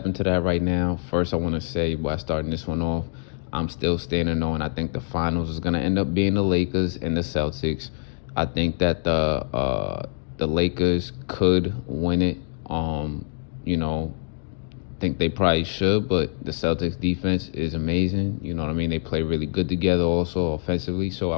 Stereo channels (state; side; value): silent; right; digital silence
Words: into that right now. First, I want to say, by starting this one off, I'm still standing on. I think the finals is gonna end up being the Lakers and the Celtics. I think that the Lakers could win it. Think they probably should, but the Celtics defense is amazing. You know what I mean? They play really good together also offensively, so I